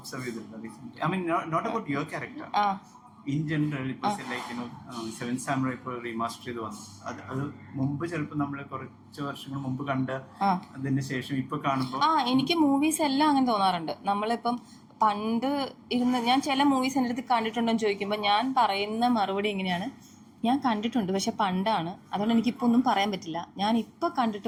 ചെയ്തിട്ടുണ്ടോ recent? I mean not about your character, in general. ഇപ്പൊ ലൈക്ക് സെവൻ സാമുറൈ ഇപ്പോൾ റീമാസ്റ്റർ ചെയ്ത് വന്നു. അത് മുമ്പ് ചിലപ്പോൾ നമ്മൾ കുറച്ച് വർഷങ്ങൾ മുമ്പ് കണ്ട അതിന് ശേഷം ഇപ്പൊ കാണുമ്പോൾ എനിക്ക് മൂവീസ് എല്ലാം അങ്ങനെ തോന്നാറുണ്ട്. നമ്മളിപ്പം പണ്ട് ഞാൻ ചില മൂവീസ് എൻ്റെ അടുത്ത് കണ്ടിട്ടുണ്ടോ എന്ന് ചോദിക്കുമ്പോൾ ഞാൻ പറയുന്ന മറുപടി എങ്ങനെയാണ്, ഞാൻ കണ്ടിട്ടുണ്ട് പക്ഷെ പണ്ടാണ്, അതുകൊണ്ട് എനിക്കിപ്പോൾ ഒന്നും പറയാൻ പറ്റില്ല, ഞാൻ ഇപ്പോൾ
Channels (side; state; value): both; identical; correlation 1.00